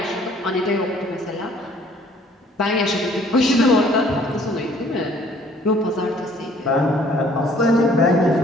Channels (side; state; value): both; normal; correlation 0.58